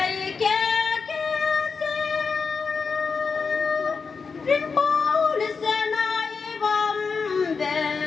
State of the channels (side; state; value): right; quieter; 5.1 dB